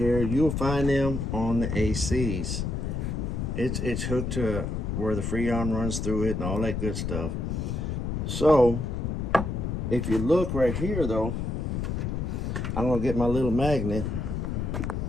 You'll find them on the ACs. It's hooked to where the Freon runs through it and all that good stuff. So if you look right here though, I'm gonna get my little magnet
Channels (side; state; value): left; noise; rumble, 2 dB below the sound